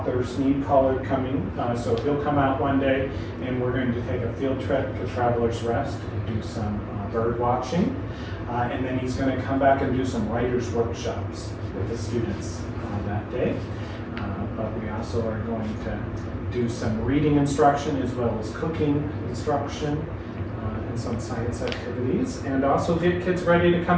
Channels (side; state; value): both; identical; correlation 1.00